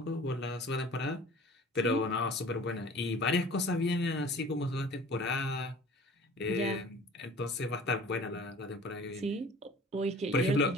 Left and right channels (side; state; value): both; normal; correlation 0.45